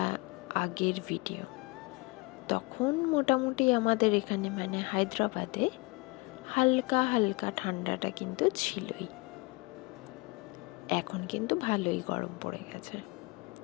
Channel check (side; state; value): right; quieter; 26.5 dB